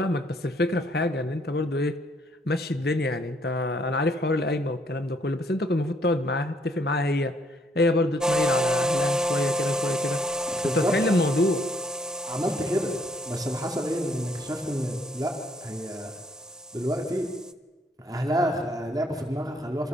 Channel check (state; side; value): normal; both; correlation 0.67